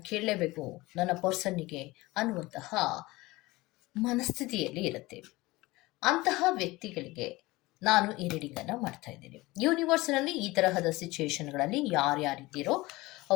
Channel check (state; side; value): quieter; right; 20.6 dB